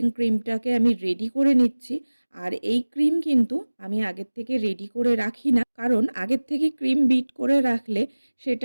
ক্রিমটাকে আমি রেডি করে নিচ্ছি। আর এই ক্রিম কিন্তু আমি আগের থেকে রেডি করে রাখি না, কারণ আগের থেকে ক্রিম বিট করে রাখলে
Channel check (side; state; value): both; inverted; correlation -1.00